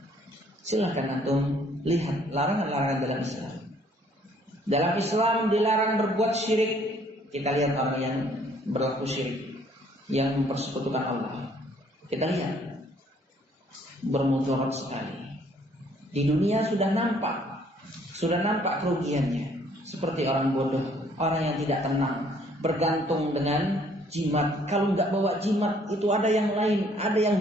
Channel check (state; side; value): normal; both; correlation 0.62